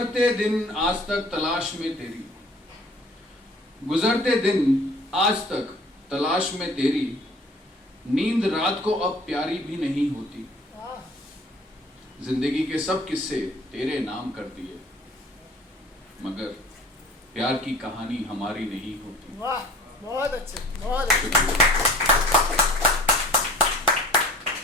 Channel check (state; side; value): normal; both; correlation 0.48